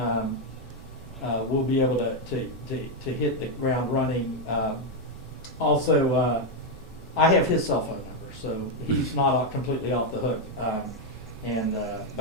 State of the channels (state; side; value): normal; both; correlation 0.03